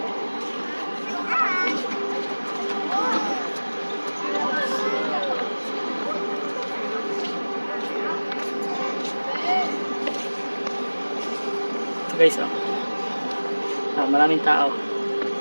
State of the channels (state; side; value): inverted; both; correlation -1.00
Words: Ito guys, oh. Maraming tao.